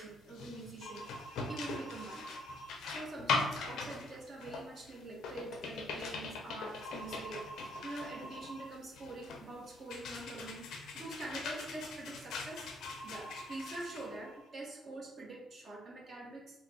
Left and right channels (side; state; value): both; normal; correlation 0.66